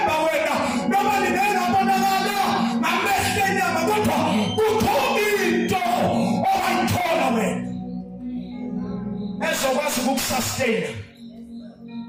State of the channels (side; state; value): both; identical; correlation 1.00